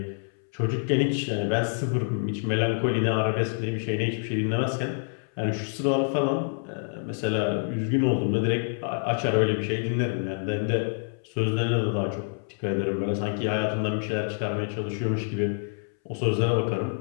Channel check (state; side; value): silent; right; 60 dB below the other